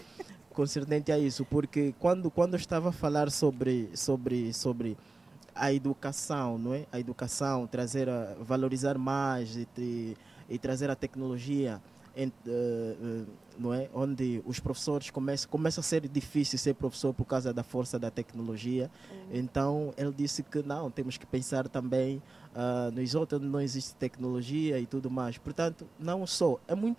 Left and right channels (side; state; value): left; quieter; 3.4 dB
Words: concernente a isso, porque quando eu estava a falar sobre a educação, não é? A educação, valorizar mais e trazer a tecnologia, não é? Onde os professores começa a ser difícil ser professor por causa da força da tecnologia. Então ele disse que não, temos que pensar também nos outros onde não existe tecnologia e tudo mais. Portanto, não só, é